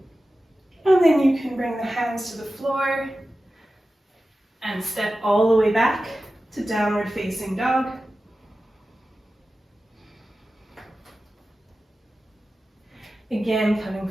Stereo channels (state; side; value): normal; both; correlation 0.94